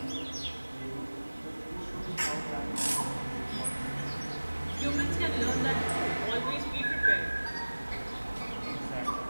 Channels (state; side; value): inverted; both; correlation -1.00